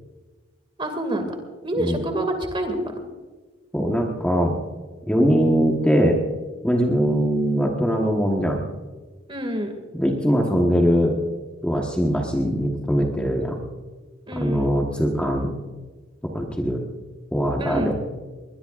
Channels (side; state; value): both; normal; correlation 0.82